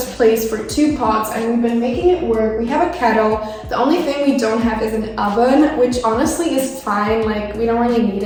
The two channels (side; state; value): both; identical; correlation 1.00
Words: place for 2 pots, and we've been making it work. We have a kettle. The only thing we don't have is an oven, which honestly is fine, like we don't really need